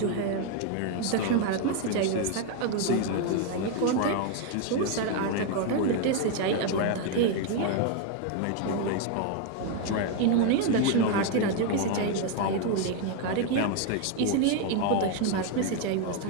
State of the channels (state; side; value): different; both; correlation 0.01